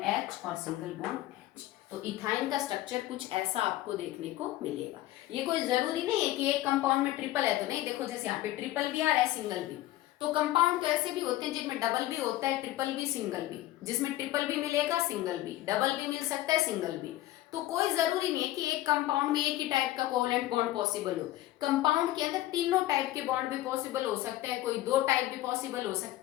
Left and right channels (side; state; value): right; quieter; 15.5 dB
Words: H और सिंगल बॉन्ड H। तो इथाइन का स्ट्रक्चर कुछ ऐसा आपको देखने को मिलेगा। ये कोई जरूरी नहीं है कि एक कंपाउंड में ट्रिपल है तो नहीं, देखो जैसे यहाँ पे ट्रिपल भी आ रहा है, सिंगल भी। तो कंपाउंड तो ऐसे भी होते हैं जिनमें डबल भी होता है, ट्रिपल भी, सिंगल भी। जिसमें ट्रिपल भी मिलेगा, सिंगल भी, डबल भी मिल सकता है, सिंगल भी। तो कोई जरूरी नहीं है कि एक कंपाउंड में एक ही टाइप का कोवलेंट बॉन्ड पॉसिबल हो। कंपाउंड के अंदर तीनों टाइप के बॉन्ड भी पॉसिबल हो सकते हैं, कोई 2 टाइप भी पॉसिबल हो